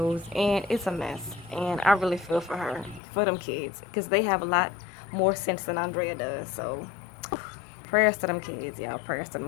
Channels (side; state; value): right; drops out; at 3.0 s